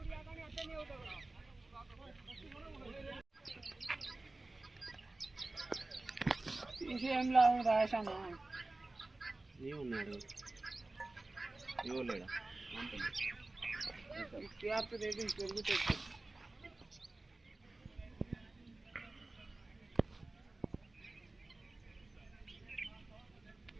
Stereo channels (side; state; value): left; quieter; 3.0 dB